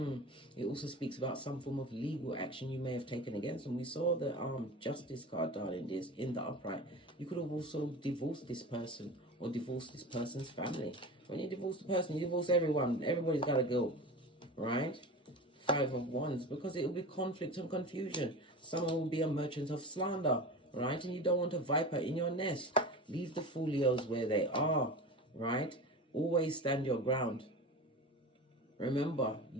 also speaks about some form of legal action you may have taken against them. We saw the Justice card, darling dears, in the upright. You could have also divorced this person or divorced this person's family. When you divorce the person, you divorce everyone. Everybody's got to go, right? 5 of Wands, because it will be conflict and confusion. Someone will be a merchant of slander, right? And you don't want a viper in your nest. Leave the folios where they are, right? Always stand your ground. Remember,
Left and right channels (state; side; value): normal; both; correlation 0.31